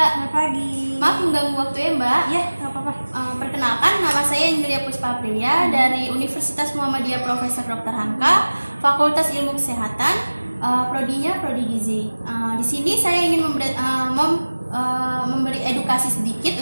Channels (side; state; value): both; inverted; correlation -1.00